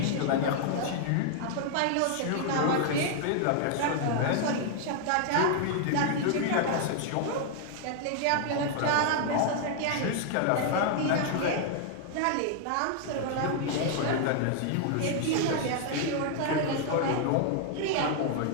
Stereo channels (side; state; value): both; different; correlation 0.00